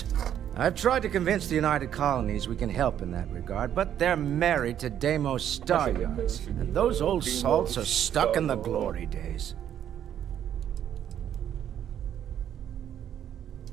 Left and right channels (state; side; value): quieter; left; 10.1 dB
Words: I've tried to convince the United Colonies we can help in that regard, but they're married to Deimos star yards, and those old salts are stuck in the glory days.